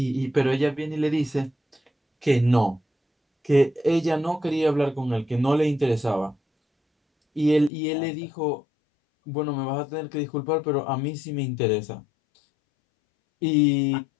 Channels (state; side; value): drops out; right; at 7.7 s